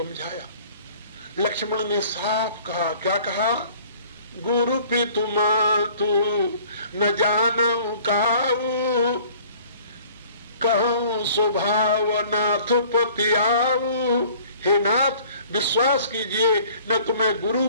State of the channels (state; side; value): inverted; both; correlation -0.52